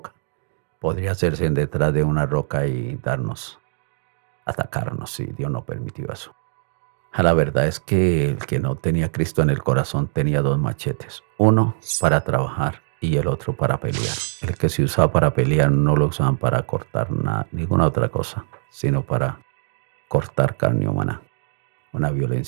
Podría hacerse detrás de una roca y atacarnos, si Dios no permitió eso. La verdad es que el que no tenía Cristo en el corazón tenía 2 machetes, uno para trabajar y el otro para pelear. El que se usaba para pelear no lo usaban para cortar ninguna otra cosa, sino para cortar carne humana. Una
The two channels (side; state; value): left; silent; digital silence